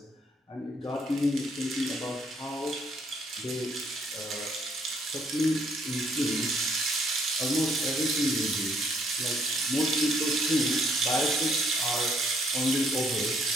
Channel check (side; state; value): both; normal; correlation 0.67